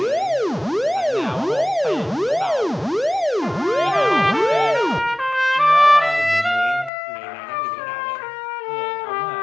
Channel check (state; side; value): drops out; right; at 6.9 s